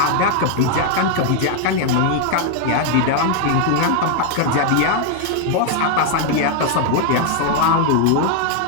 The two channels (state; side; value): different; both; correlation 0.00